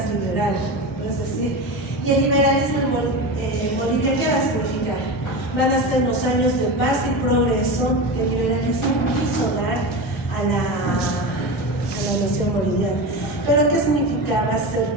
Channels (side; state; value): both; normal; correlation 0.23